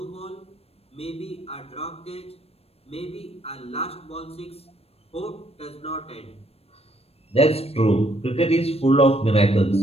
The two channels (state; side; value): late; right; 0.29 ms